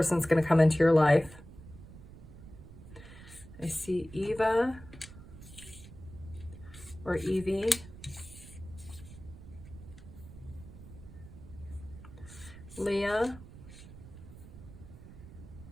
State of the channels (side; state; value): right; noise; rumble, 16 dB below the sound